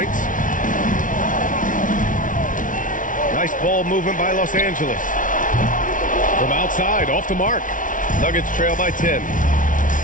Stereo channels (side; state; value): right; late; 0.38 ms